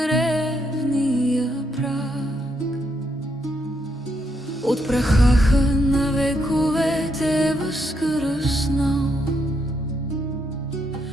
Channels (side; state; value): both; normal; correlation 0.78